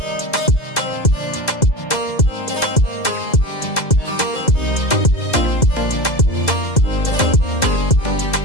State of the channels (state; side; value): late; right; 2.0 ms